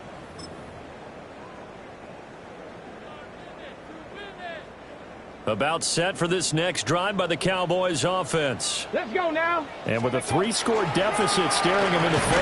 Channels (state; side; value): identical; both; correlation 1.00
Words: About set for this next drive by the Cowboys offense. Let's go now. And with a 3-score deficit staring them in the